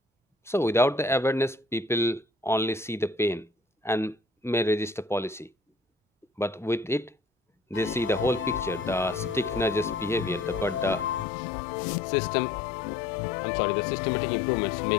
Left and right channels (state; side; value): drops out; right; at 11.2 s